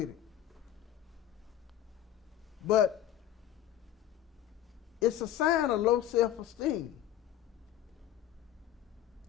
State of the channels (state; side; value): quieter; right; 11.7 dB